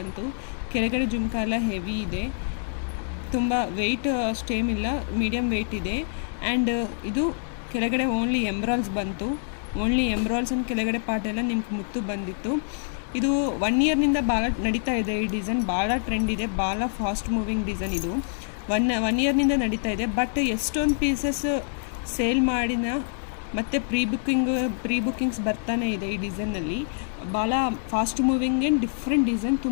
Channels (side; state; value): right; silent; digital silence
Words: ಕೆಳಗಡೆ ಜುಮ್ಕಾ ಎಲ್ಲ ಹೆವಿ ಇದೆ, ತುಂಬ ವೆಯ್ಟ್ ಅಷ್ಟೇನಿಲ್ಲ, ಮೀಡಿಯಮ್ ವೆಯ್ಟ್ ಇದೆ. ಆ್ಯಂಡ್ ಇದು ಕೆಳಗಡೆ ಓನ್ಲಿ ಎಂಬ್ರಾಲ್ಸ್ ಬಂತು, ಓನ್ಲಿ ಎಂಬ್ರಾಲ್ಸ್ ಅಂಡ್ ಕೆಳಗಡೆ ಪಾರ್ಟ್ ಎಲ್ಲ ನಿಮ್ಗೆ ಮುತ್ತು ಬಂದಿತ್ತು. ಇದು 1 ಇಯರ್ನಿಂದ ಭಾಳ ನಡೀತಾ ಇದೆ ಈ ಡಿಸೈನ್, ಭಾಳ ಟ್ರೆಂಡ್ ಇದೆ, ಭಾಳ ಫಾಸ್ಟ್ ಮೂವಿಂಗ್ ಡಿಸೈನ್ ಇದು. ಒನ್ ಇಯರ್ನಿಂದ ನಡೀತಾ ಇದೆ. ಬಟ್ ಎಷ್ಟೊಂದು ಪೀಸಸ್ ಸೇಲ್ ಮಾಡಿನ ಮತ್ತು ಪ್ರೀ ಬುಕ್ಕಿಂಗ್ಸ್ ಬರ್ತಾನೆ ಇದೆ ಈ ಡಿಸೈನಲ್ಲಿ. ಭಾಳ fast moving and different design,